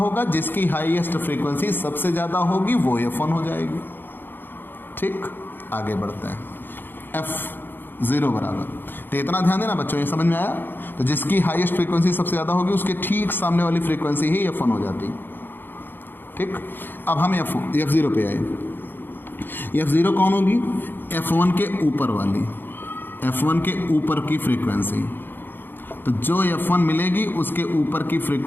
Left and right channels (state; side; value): late; right; 0.097 ms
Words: जिसकी हाईएस्ट फ्रीक्वेंसी सबसे ज़्यादा होगी वो F1 हो जाएगी। ठीक, आगे बढ़ते हैं। F0 बराबर, तो इतना ध्यान देना बच्चों, ये समझ में आया? तो जिसकी हाईएस्ट फ्रीक्वेंसी सबसे ज़्यादा होगी उसके ठीक सामने वाली फ्रीक्वेंसी ही F1 हो जाती। ठीक, अब हम F0 पे आए। F0 कौन होगी? F1 के ऊपर वाली, F1 के ऊपर की फ्रीक्वेंसी। तो जो F1 मिलेगी उसके ऊपर की